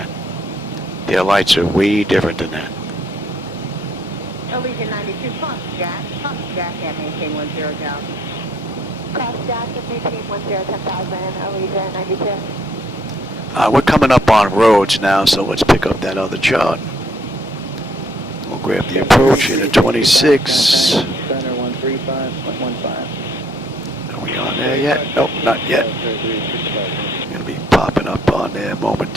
Their lights are way different than that. Allegiant 92, cross Jack and maintain 10 down. Cross Jack and maintain 10,000, Allegiant 92. We're coming up on roads now, so let's pick up that other chart. We'll grab the approach in at 26. Center 135.15. Are we on there yet? Nope, not yet. Gonna be popping up on there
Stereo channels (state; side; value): normal; both; correlation 0.67